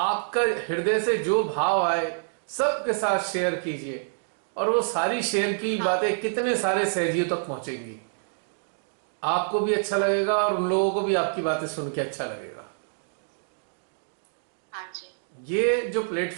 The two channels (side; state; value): left; silent; digital silence